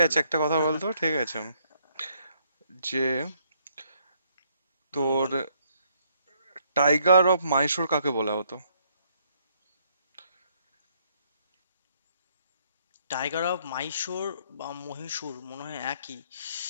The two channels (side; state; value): both; inverted; correlation -0.70